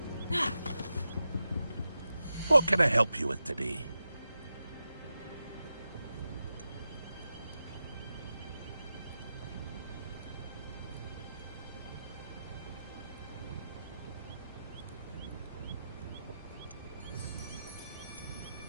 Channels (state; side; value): inverted; both; correlation -0.90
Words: What can I help you with today?